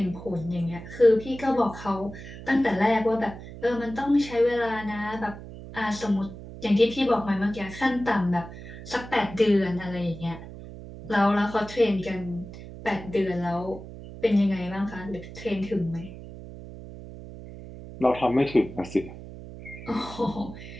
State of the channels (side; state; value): right; noise; hum, 13 dB below the sound